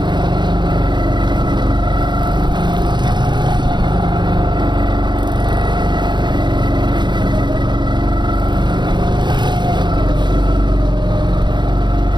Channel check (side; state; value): left; late; 0.22 ms